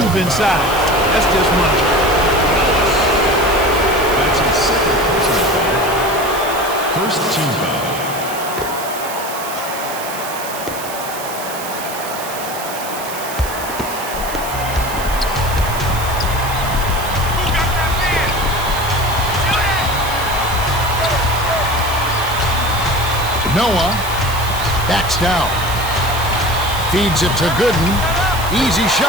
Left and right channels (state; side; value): noise; right; hiss, 10 dB below the sound